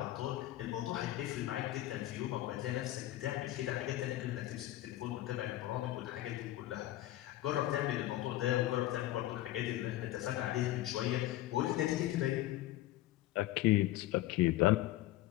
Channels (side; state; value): right; quieter; 15.4 dB